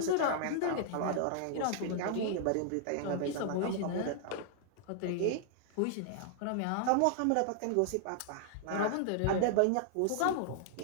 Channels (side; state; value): both; different; correlation -0.01